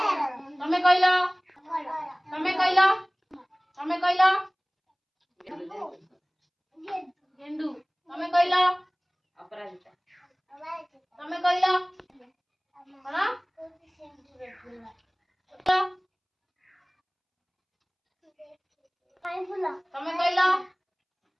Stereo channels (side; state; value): both; identical; correlation 1.00